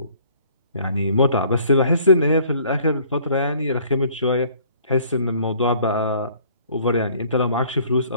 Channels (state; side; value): inverted; both; correlation -0.57